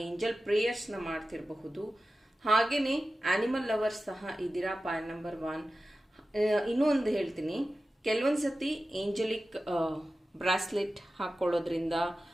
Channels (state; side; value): normal; both; correlation 0.94